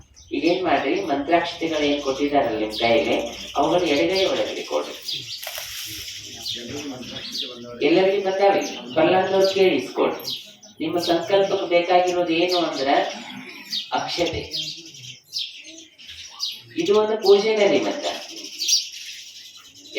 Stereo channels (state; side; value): identical; both; correlation 1.00